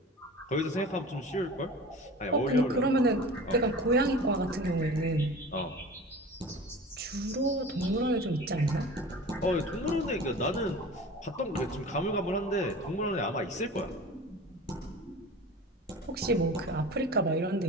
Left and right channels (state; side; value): normal; both; correlation 0.37